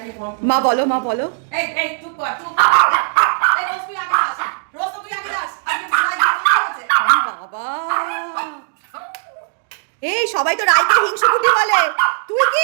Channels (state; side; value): silent; left; digital silence